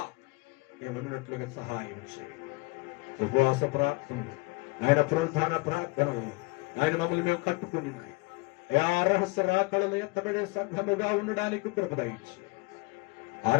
ఏమన్నట్లుగా సహాయం చేయండి. ఉపవాస ప్రార్థన ఆయన పునరుద్ధాన ప్రార్థనలు ఆయన మమ్మల్ని మేము కట్టుకుని ఆ రహస్య రాకడలు ఎత్తబడే సంఘముగా ఉండడానికి కృప దయచి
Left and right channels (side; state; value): right; quieter; 26.5 dB